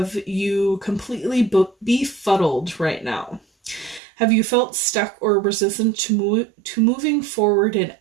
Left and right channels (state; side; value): drops out; left; at 4.0 s